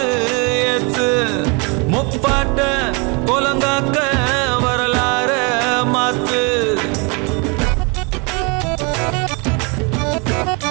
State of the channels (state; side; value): quieter; left; 31.7 dB